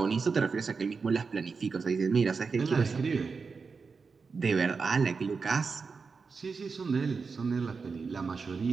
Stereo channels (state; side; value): quieter; left; 4.9 dB